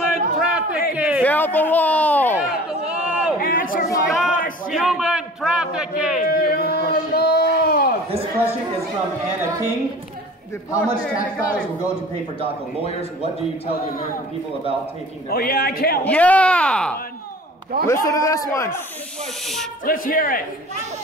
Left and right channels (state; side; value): normal; both; correlation 0.44